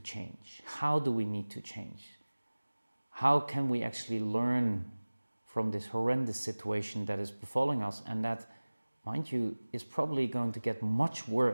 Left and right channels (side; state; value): both; inverted; correlation -1.00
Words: change? How do we need to change? How can we actually learn from this horrendous situation that is befalling us, and that, mind you, is probably going to get much